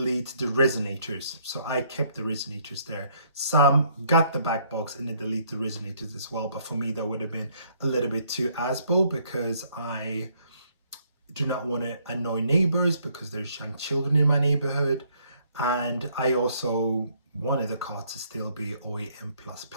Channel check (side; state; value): both; inverted; correlation -0.67